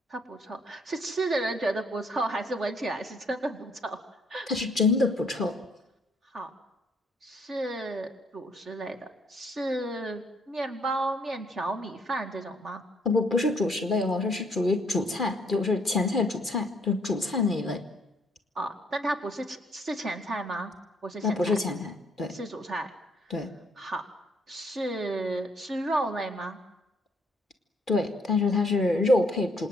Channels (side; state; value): both; normal; correlation 0.66